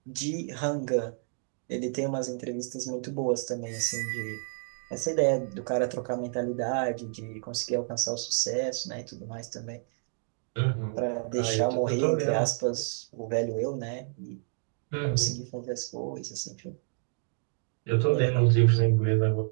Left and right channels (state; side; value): silent; left; 58 dB below the other